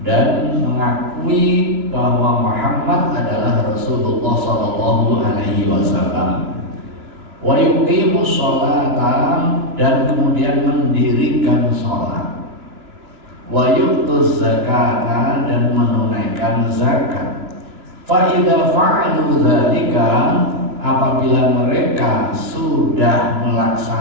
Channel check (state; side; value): late; left; 3.0 ms